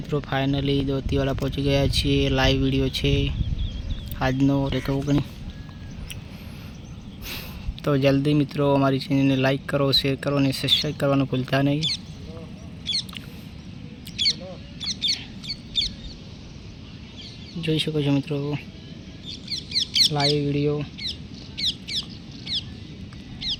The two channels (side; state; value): both; identical; correlation 1.00